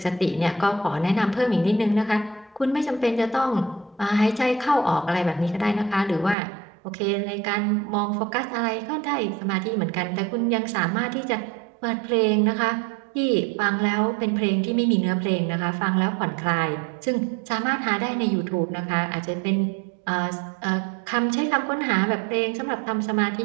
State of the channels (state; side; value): drops out; left; at 6.4 s